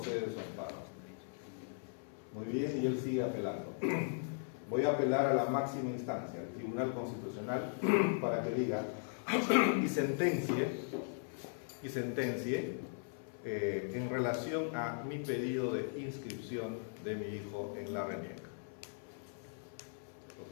su amparo. Muy bien, y él sigue apelando. Voy a apelar a la máxima instancia, el Tribunal Constitucional, para que diga y sentencie en relación a mi pedido de inscripción de mi hijo en la RENIEC.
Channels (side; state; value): right; silent; 52 dB below the other